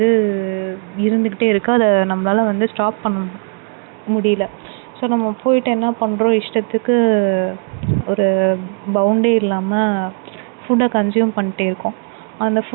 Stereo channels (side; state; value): left; quieter; 38.5 dB